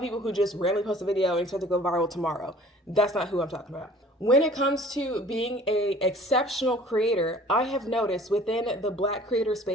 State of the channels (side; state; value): both; normal; correlation 0.50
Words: people who just randomly post a video and expect to go viral tomorrow. That's not who I'm talking about. When it comes to being an exceptional creator, I have noticed within the Black creator